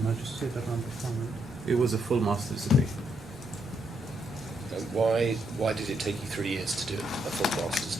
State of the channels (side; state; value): both; normal; correlation 0.77